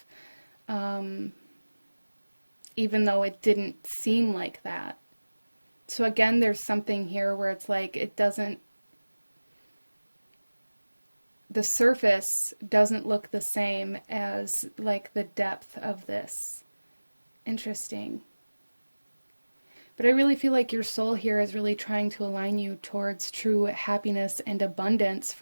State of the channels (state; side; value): inverted; both; correlation -1.00